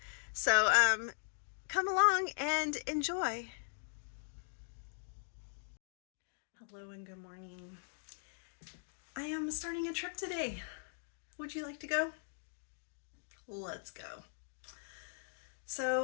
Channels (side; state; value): right; silent; digital silence